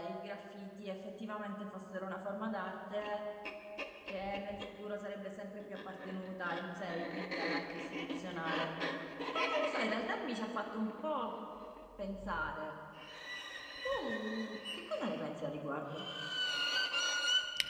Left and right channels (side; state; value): both; identical; correlation 1.00